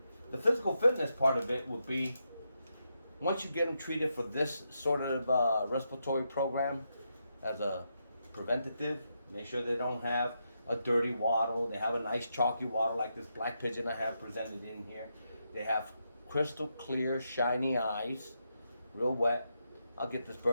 The physical fitness part of it would be, once you get them treated for this sort of respiratory program as a preventative, make sure they don't have a dirty wattle. They have a nice chalky wattle like this black pigeon I have presented in here. They have crystal clear, shiny eyes, real wet. I'll get this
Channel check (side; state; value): both; inverted; correlation -0.83